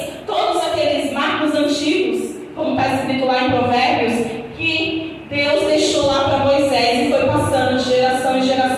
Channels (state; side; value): identical; both; correlation 1.00